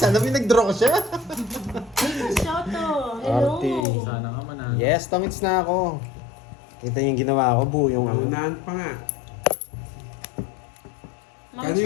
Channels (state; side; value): drops out; right; at 3.9 s